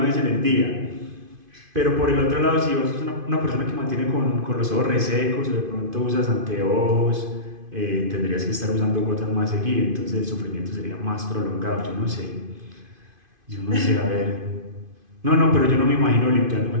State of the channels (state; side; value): late; left; 2.5 ms